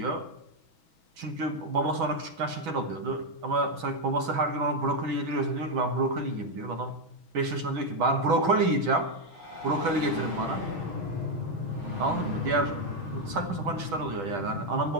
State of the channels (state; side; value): late; left; 6.2 ms